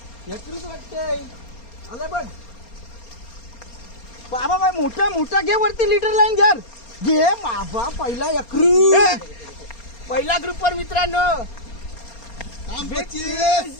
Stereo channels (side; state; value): right; late; 4.3 ms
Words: यकृत वाटतंय आलं बघ बाबा बाय मोठा मोठा घे वरती लिटर लाईन घे बाबा पहिला यकृत पहिला ग्रुपवर मित्रांनो